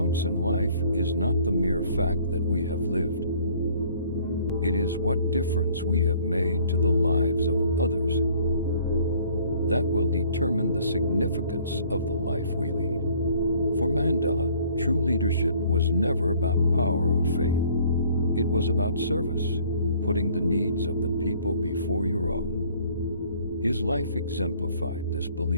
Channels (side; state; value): both; inverted; correlation -0.57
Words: in life is not the mere fact that we have lived. It is what difference we have made to the lives of others that will determine the significance of the life we lead. For Mandela, true leadership was never about power or fame. It was about service, putting the needs of the people before your own. His life exemplified this